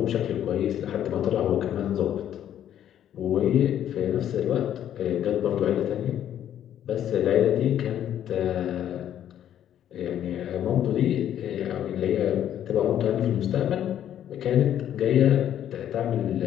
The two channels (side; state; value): right; quieter; 10.6 dB